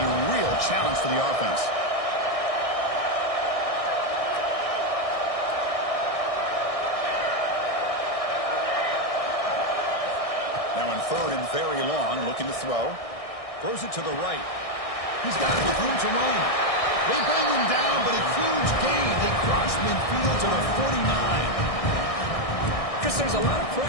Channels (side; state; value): right; late; 1.6 ms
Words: real challenge for the offense. Now in third and very long, looking to throw. Throws it to the right. He's got it with room to run. They bring him down, but a huge gain. They cross midfield to the 49. Chris, there's a lot of